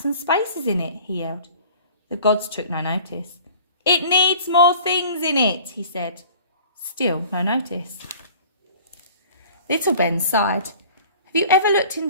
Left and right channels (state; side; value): inverted; both; correlation -0.47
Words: and spaces in it?" he yelled. The gods took no notice. "It needs more things in it," he said. Still no notice. Little Ben sighed. "Have you ever looked